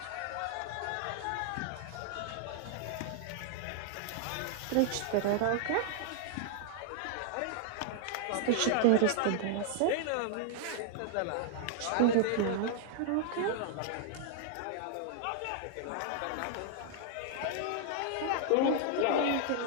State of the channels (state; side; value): different; both; correlation -0.01